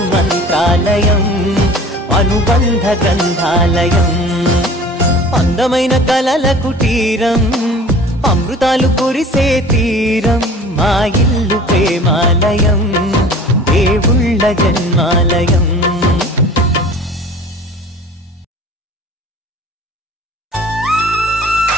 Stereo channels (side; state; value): both; normal; correlation 0.44